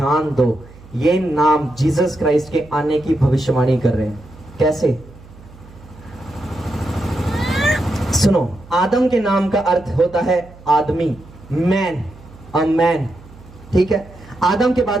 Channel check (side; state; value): right; noise; hum, 21 dB below the sound